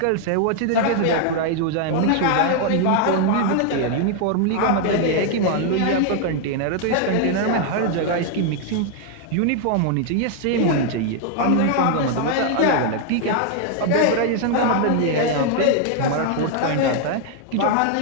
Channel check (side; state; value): both; different; correlation 0.00